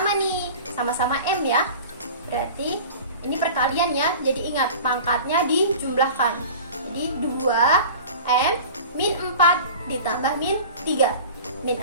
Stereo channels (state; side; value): inverted; both; correlation -0.38